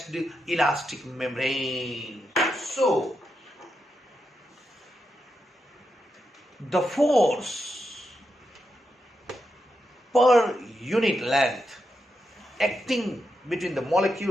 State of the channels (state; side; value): normal; both; correlation 0.85